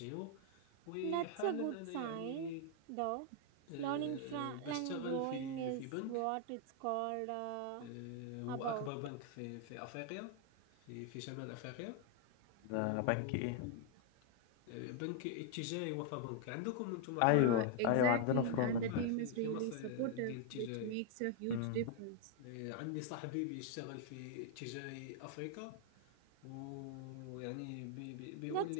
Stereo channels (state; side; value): different; both; correlation 0.00